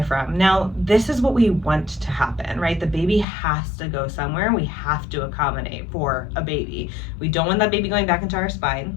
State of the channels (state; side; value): drops out; right; at 3.2 s